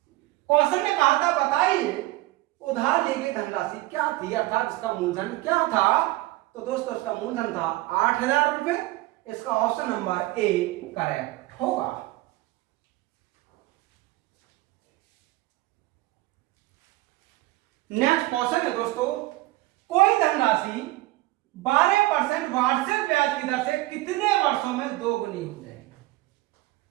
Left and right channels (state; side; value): quieter; left; 18.6 dB